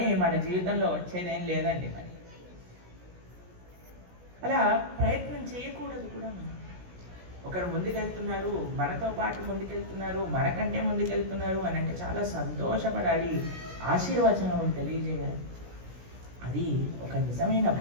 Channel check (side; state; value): left; late; 17 ms